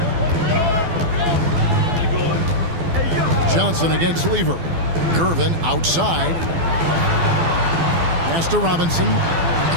Johnson against Lever. Gervin outside. Pass to Robinson.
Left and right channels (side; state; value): left; late; 12 ms